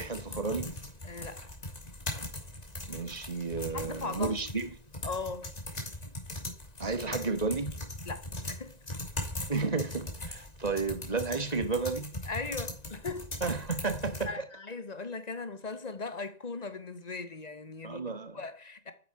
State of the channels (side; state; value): right; late; 1.9 ms